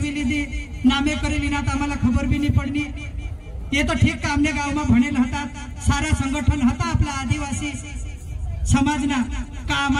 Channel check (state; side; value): identical; both; correlation 1.00